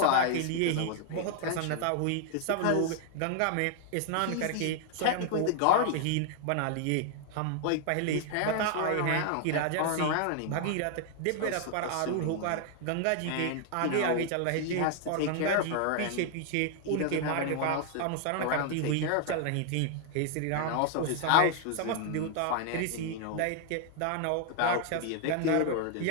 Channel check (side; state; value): both; different; correlation 0.00